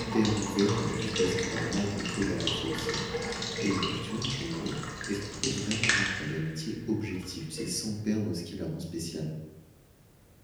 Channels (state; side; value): identical; both; correlation 1.00